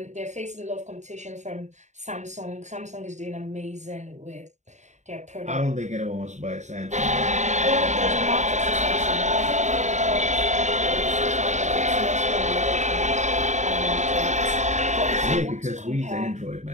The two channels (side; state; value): left; late; 0.34 ms